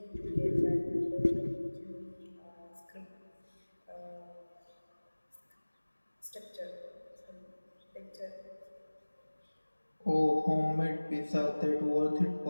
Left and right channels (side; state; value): both; inverted; correlation -1.00